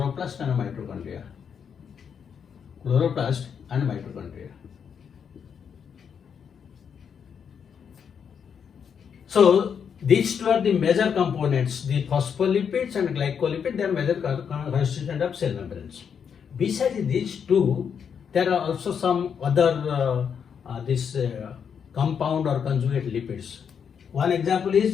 and mitochondria. Chloroplast and mitochondria. So, these two are the major components, the phospholipids and glycolipids, they are major constituent of cell membranes. Besides these two, there are also some other compound or conjugate lipids. One example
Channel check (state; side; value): quieter; right; 7.2 dB